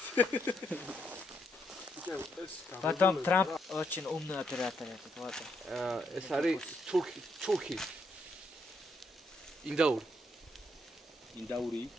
Потом Трамп очень умный оператор этот, вот. ეს არის თურქი. ინდაური.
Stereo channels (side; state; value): both; normal; correlation 0.77